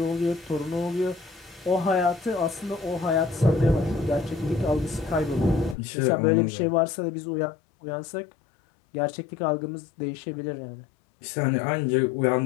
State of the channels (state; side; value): drops out; right; at 5.8 s